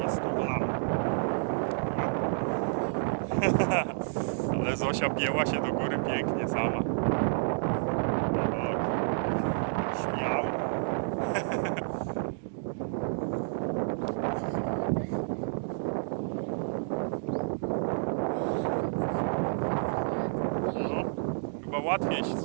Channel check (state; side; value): silent; left; digital silence